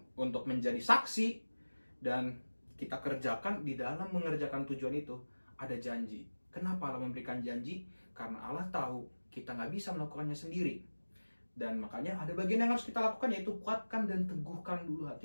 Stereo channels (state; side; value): inverted; both; correlation -1.00